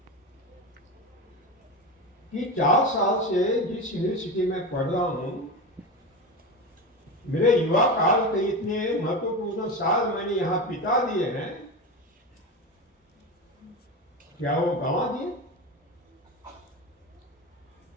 कि 4 साल से जिस यूनिवर्सिटी में पढ़ रहा हूं, मेरे युवा काल के इतने महत्वपूर्ण साल मैंने यहां बिता दिए हैं, क्या वो गंवा दिए?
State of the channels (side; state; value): both; normal; correlation 0.22